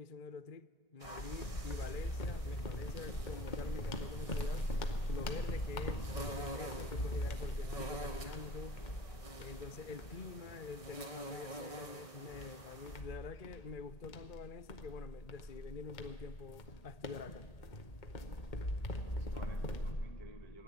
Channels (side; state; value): right; late; 1.6 ms